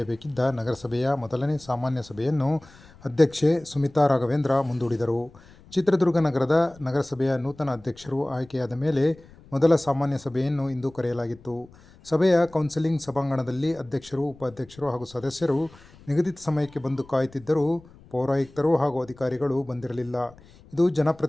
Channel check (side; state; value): left; noise; rumble, 24 dB below the sound